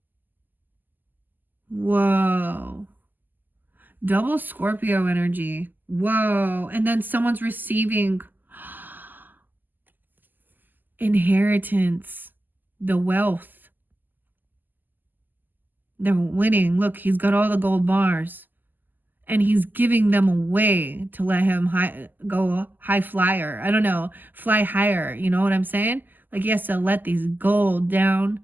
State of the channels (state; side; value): late; left; 0.088 ms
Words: Whoa. Double Scorpio energy. Whoa. And then someone's receiving inheritance, the wealth. They're winning. Look, he's got all the gold bars. And he's giving them away to let him go high flyer. I don't know. Fly higher. You know what I'm saying? Like he has to let these gold down.